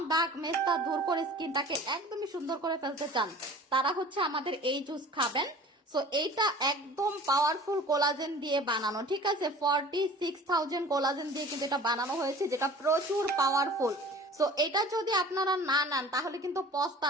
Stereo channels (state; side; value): normal; both; correlation 0.44